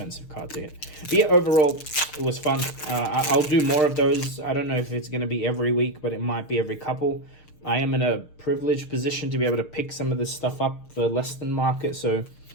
card to hit. But yeah, overall, it was fun. I'll do more of those. I don't know if it's going to be every week, but it might be every couple. I am in a privileged position to be able to pick some of this stuff up for less than market, so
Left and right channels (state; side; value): late; right; 6.5 ms